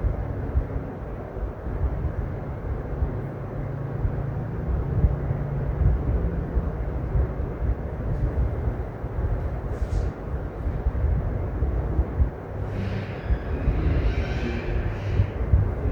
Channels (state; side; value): identical; both; correlation 1.00